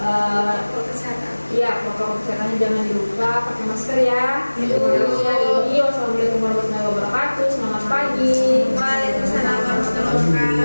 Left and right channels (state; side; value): inverted; both; correlation -1.00